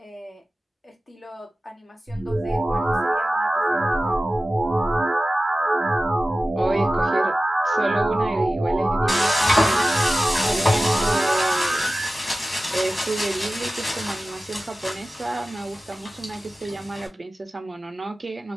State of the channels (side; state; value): both; normal; correlation 0.95